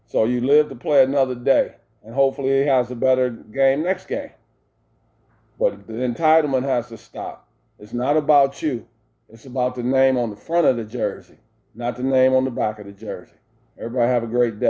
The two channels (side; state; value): both; identical; correlation 1.00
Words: So you live to play another day, and hopefully he has a better game next game. But the entitlement has to stop. It's not about you. It's about the name on the front of the jersey, not the name on the back of the jersey. Everybody have a great